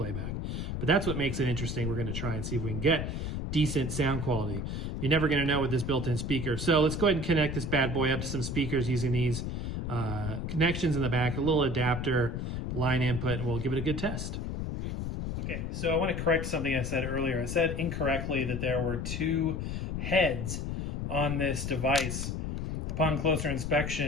But that's what makes it interesting. We're going to try and see if we can get decent sound quality. You're never going to know with this built-in speaker. So let's go ahead and connect this bad boy up to some speakers using these connections in the back, a little adapter, line input, and we'll give it a good test. Okay, so I want to correct something I said earlier. I said incorrectly that there were 2 heads on this device. Upon closer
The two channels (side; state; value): left; noise; rumble, 3 dB below the sound